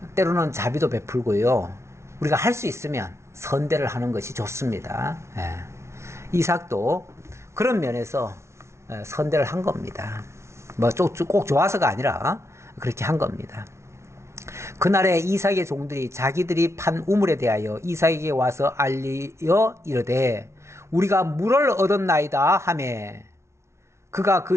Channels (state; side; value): late; left; 0.13 ms